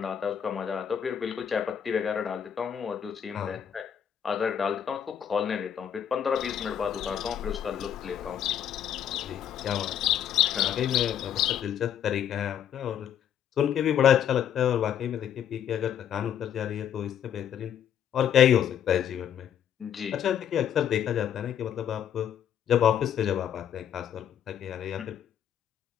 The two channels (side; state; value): right; quieter; 9.3 dB